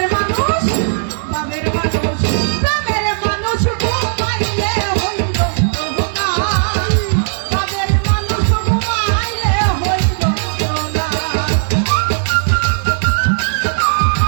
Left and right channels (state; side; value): silent; left; 67 dB below the other